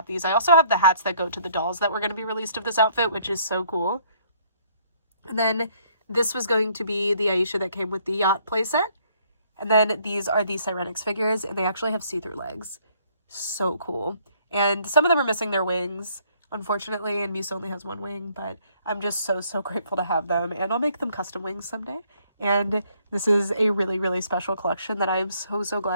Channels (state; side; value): inverted; both; correlation -0.65